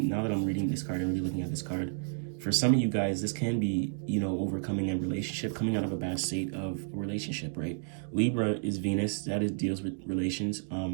I'm reading this card and really looking at this card, for some of you guys, this can be, overcoming a relationship, coming out of a bad state of a relationship, right? Libra is Venus. That deals with relations.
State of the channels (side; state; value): left; silent; digital silence